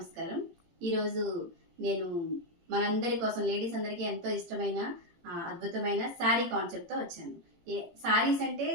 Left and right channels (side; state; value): left; late; 17 ms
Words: ఈరోజు నేను మనందరి కోసం లేడీస్ అందరికీ ఎంతో ఇష్టమైన అద్భుతమైన శారీ కాన్సెప్ట్తో వచ్చాను. శారీస్ అంటే